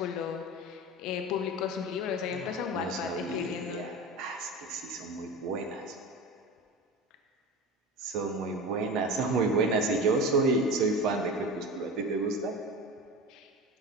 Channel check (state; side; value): normal; both; correlation 0.30